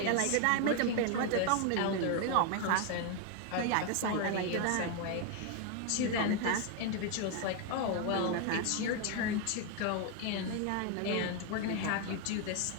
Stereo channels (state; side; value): different; both; correlation 0.01